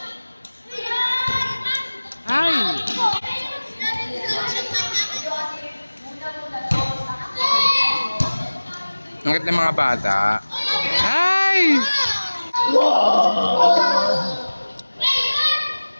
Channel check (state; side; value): inverted; both; correlation -1.00